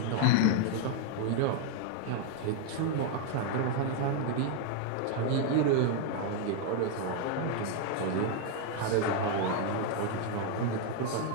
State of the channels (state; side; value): different; both; correlation 0.00